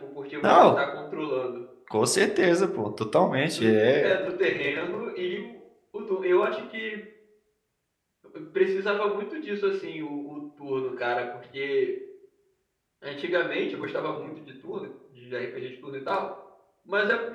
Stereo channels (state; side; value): identical; both; correlation 1.00